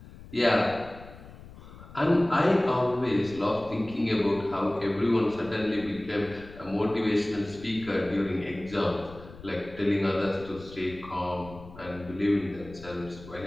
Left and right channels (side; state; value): left; noise; rumble, 18 dB below the sound